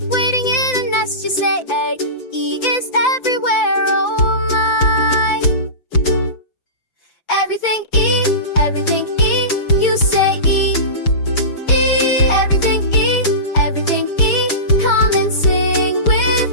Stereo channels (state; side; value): late; right; 5.9 ms